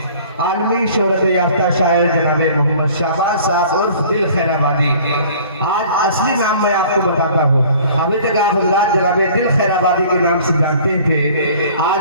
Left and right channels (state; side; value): inverted; both; correlation -0.50